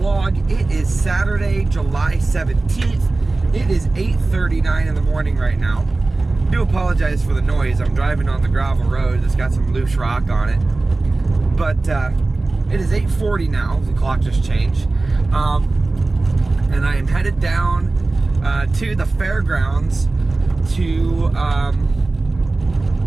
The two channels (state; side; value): quieter; left; 3.3 dB